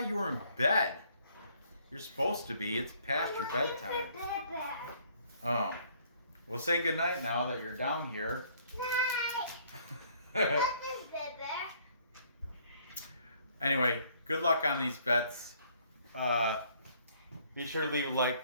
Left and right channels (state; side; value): inverted; both; correlation -0.62